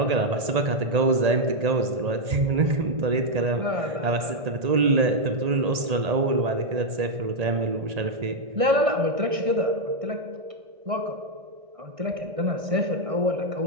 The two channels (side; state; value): left; late; 1.8 ms